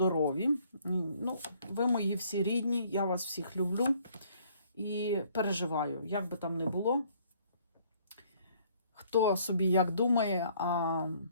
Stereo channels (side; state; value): both; inverted; correlation -0.62